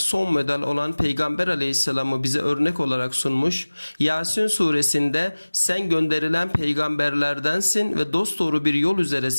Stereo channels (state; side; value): inverted; both; correlation -1.00